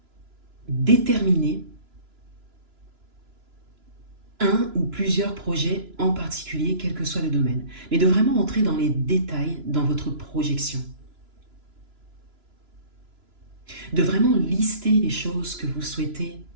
déterminer un ou plusieurs projets en particulier, quel que soit le domaine, mais de vraiment entrer dans les détails dans votre projection. De vraiment lister les choses que vous souhaitez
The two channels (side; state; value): left; late; 2.9 ms